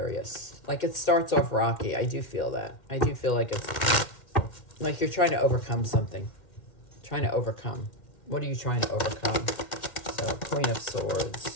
Like it starts off rocky. I do feel that. I do feel like it's like you're trying to overcome something. Trying to overcome. What are you trying to overcome? So Queen of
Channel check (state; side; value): late; right; 2.1 ms